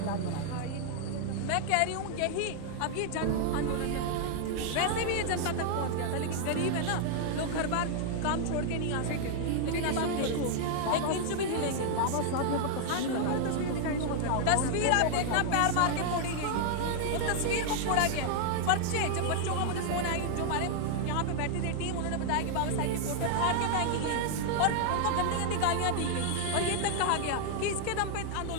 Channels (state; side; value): different; both; correlation 0.00